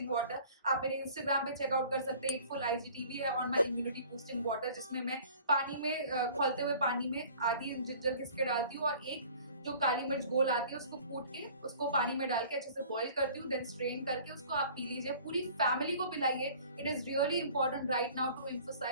water. आप मेरे इंस्टाग्राम पे चेकआउट कर सकते हैं। एक फुल IGTV है on my immunity boosting water, जिसमें मैं पानी में खौलते हुए पानी में आधी जिंजर घिसके डालती हूँ और एक जो काली मिर्च गोल आती है उसको कूट के उसको पानी में डाल के अच्छे से बॉईल करती हूँ, देन स्ट्रेन करके उसको आप पी लीजिए। पूरी फैमिली को पिलाइए। It is really important right now to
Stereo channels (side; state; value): both; inverted; correlation -0.49